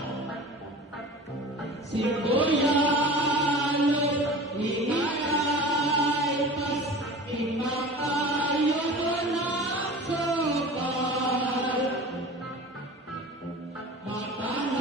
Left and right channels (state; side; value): normal; both; correlation 0.37